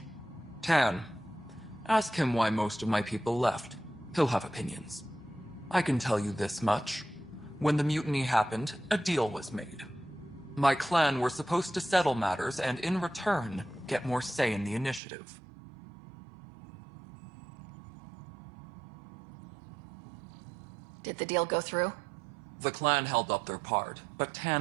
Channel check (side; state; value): left; drops out; at 15.0 s